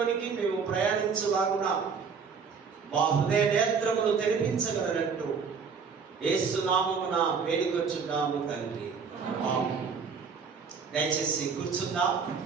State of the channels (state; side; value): quieter; left; 5.7 dB